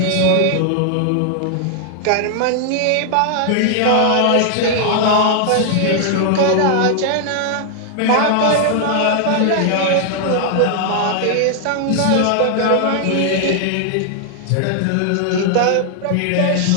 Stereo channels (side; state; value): both; different; correlation 0.00